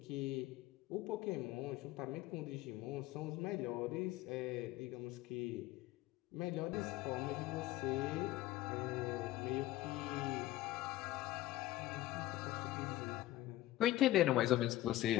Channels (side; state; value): right; quieter; 15.7 dB